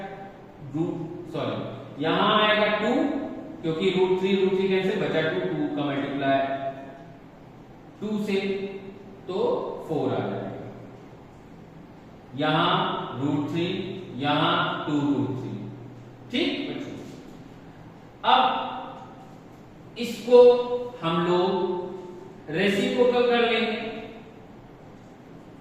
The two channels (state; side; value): identical; both; correlation 1.00